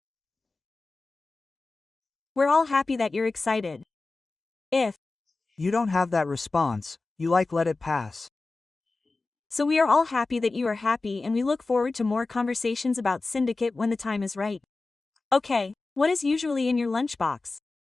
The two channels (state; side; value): quieter; right; 3.6 dB